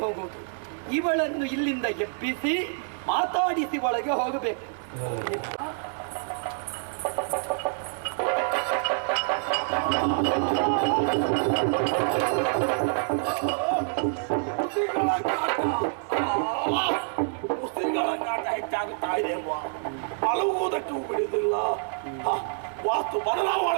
ಹೋಗುವುದು? ಇವಳನ್ನು ಇಲ್ಲಿಂದ ಎಬ್ಬಿಸಿ ಮಾತಾಡಿಸಿ ಒಳಗೆ ಹೋಗಬೇಕು. ಹೆಚ್ಚಾಗುತ್ತಾ ಇದೆ ಅಲ್ವಾ? ಮಲಗುವುದಕ್ಕೂ ಬಿಡುವುದಿಲ್ಲ. ವಾಸ್ತು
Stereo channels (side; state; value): left; silent; digital silence